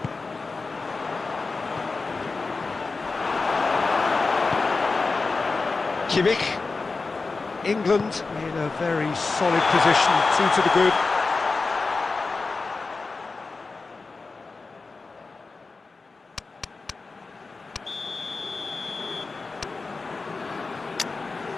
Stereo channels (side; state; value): right; quieter; 4.0 dB